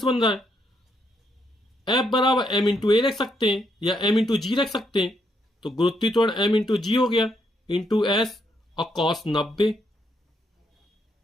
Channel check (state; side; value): normal; both; correlation 0.76